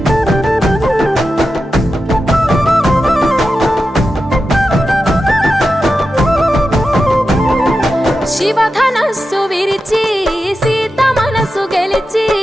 శివధనస్సు విరిచి సీత మనసు గెలిచి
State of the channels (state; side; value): normal; both; correlation 0.91